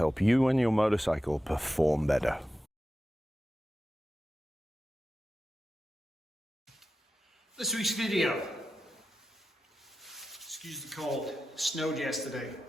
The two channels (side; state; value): both; normal; correlation 0.92